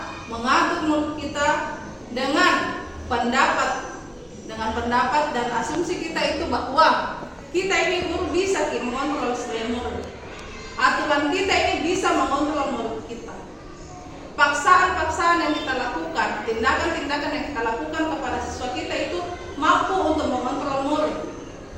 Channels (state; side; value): identical; both; correlation 1.00